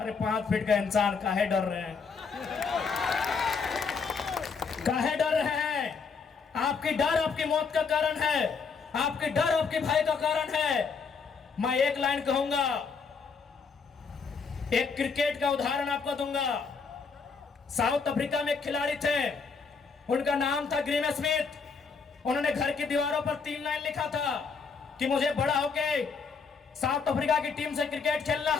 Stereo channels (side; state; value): right; quieter; 5.3 dB